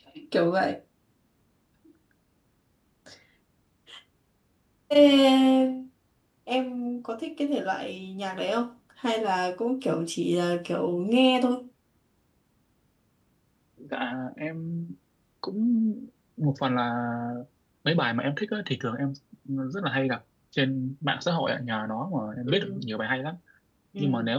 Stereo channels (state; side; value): identical; both; correlation 1.00